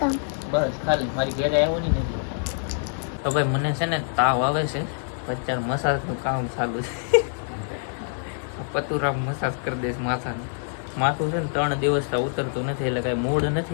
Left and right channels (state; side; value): silent; right; 56 dB below the other